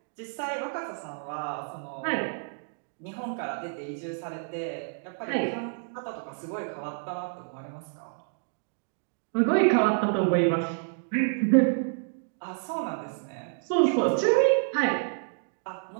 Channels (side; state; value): left; silent; 59 dB below the other